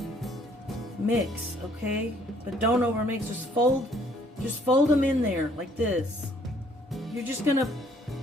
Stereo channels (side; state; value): both; normal; correlation 0.62